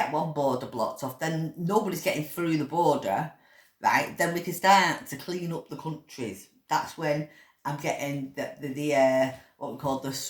one border blocked off, then nobody's getting through the border, right? Then we can start to clean up the countries. That's when I'm getting the what we call the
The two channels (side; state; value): both; identical; correlation 1.00